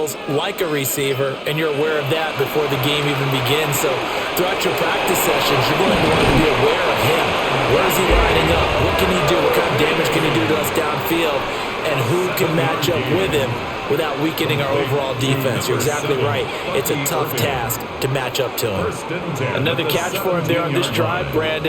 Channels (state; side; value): identical; both; correlation 1.00